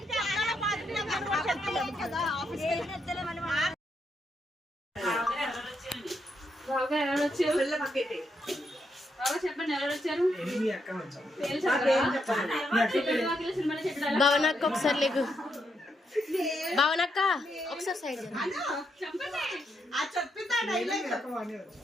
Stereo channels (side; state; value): both; normal; correlation 0.79